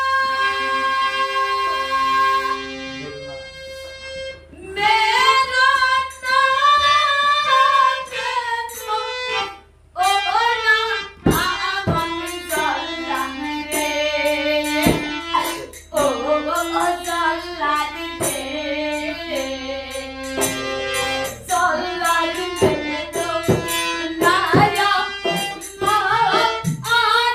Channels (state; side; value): identical; both; correlation 1.00